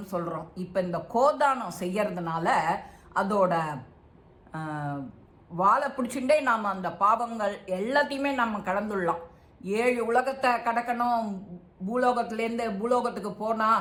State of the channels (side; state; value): both; identical; correlation 1.00